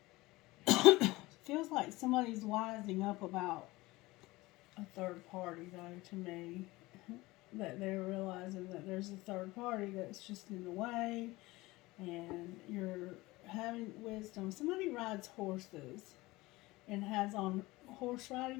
somebody's wising up about a third party, though, to me. That they're realizing that there's a third party that's just in the way, and you're having wisdom. Somebody rides horses and has on horse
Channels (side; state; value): right; quieter; 20.4 dB